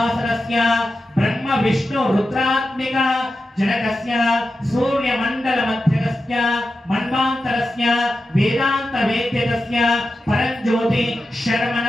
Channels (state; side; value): normal; both; correlation 0.91